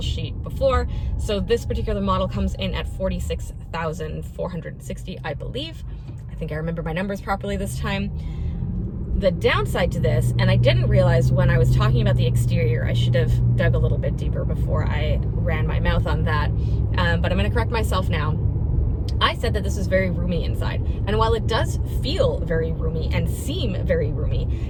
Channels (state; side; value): identical; both; correlation 1.00